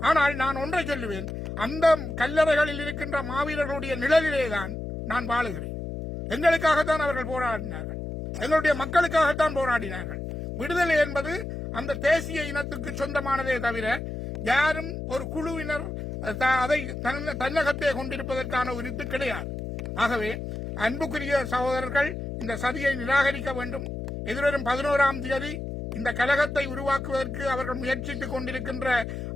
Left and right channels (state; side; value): noise; left; hum, 6 dB below the sound